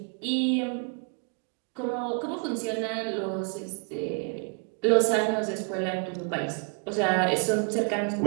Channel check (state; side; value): quieter; left; 37.6 dB